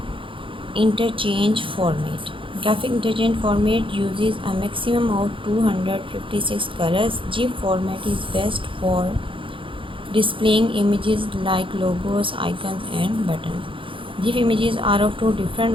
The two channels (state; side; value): late; left; 0.25 ms